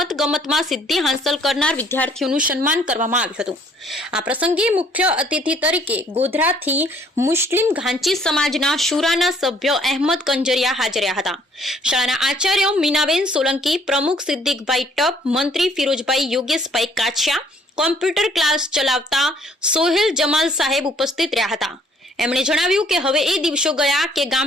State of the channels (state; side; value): normal; both; correlation 0.61